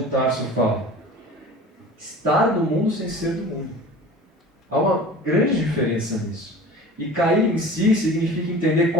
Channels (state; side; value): normal; both; correlation 0.40